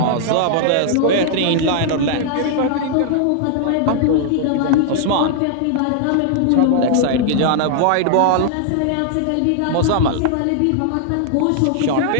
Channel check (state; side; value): different; both; correlation 0.00